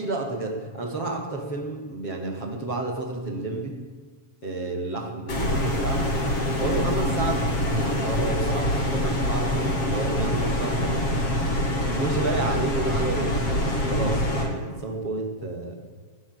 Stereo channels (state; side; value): late; right; 7.4 ms